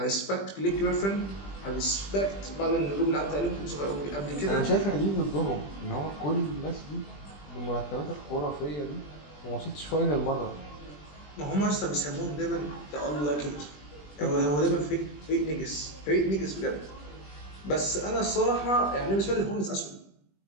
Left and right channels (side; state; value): right; late; 20 ms